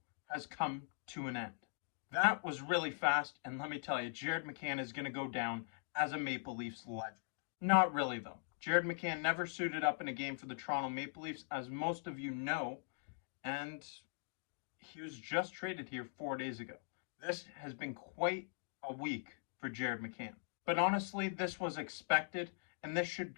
has come to an end. That was really fast, and let me tell you, Jared McCann is going to go down as a Maple Leafs legend. Not really, though. Jared McCann never suited up in a game for the Toronto Maple Leafs, as most of you know, and he was just traded here 4 days ago. This has been quite a week for Jared McCann. But honestly, this was expected, and this should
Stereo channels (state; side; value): silent; right; digital silence